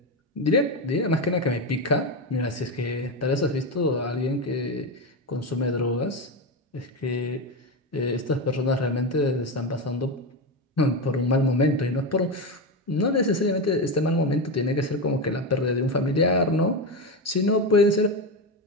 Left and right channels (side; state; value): both; normal; correlation 0.14